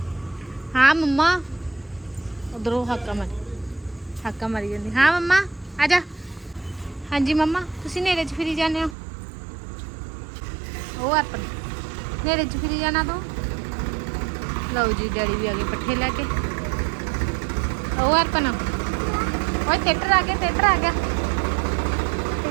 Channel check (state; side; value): drops out; left; at 9.0 s